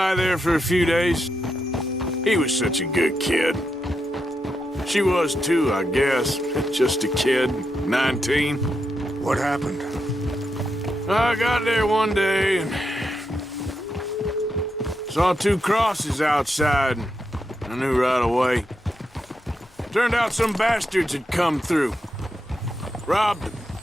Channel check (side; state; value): both; normal; correlation 0.84